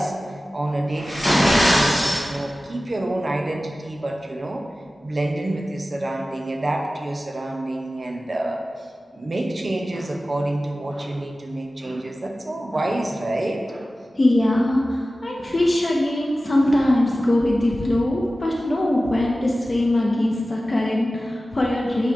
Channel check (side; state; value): both; normal; correlation 0.95